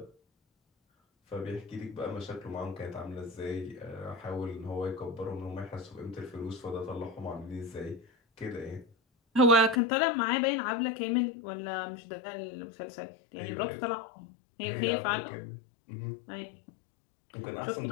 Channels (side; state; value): right; drops out; at 9.8 s